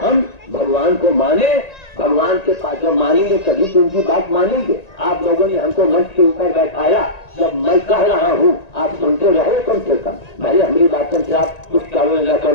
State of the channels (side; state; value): right; late; 1.9 ms